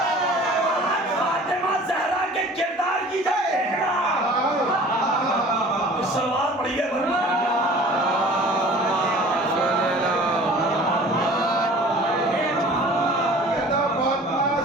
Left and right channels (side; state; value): both; normal; correlation 0.46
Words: فاطمہ زہرا کے کردار کی جنگ دیکھنا۔ سلوات پڑھیے ورنہ